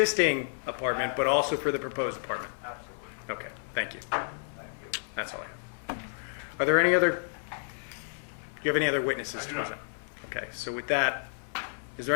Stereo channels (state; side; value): silent; right; 56 dB below the other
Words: apartment, but also for the proposed apartment? Absolutely. Okay, thank you. Thank you. That's all. Are there any other, do you have any other witnesses? I do not. Okay, so with that, is